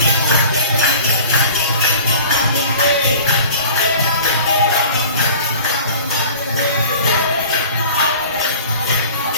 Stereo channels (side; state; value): both; inverted; correlation -0.43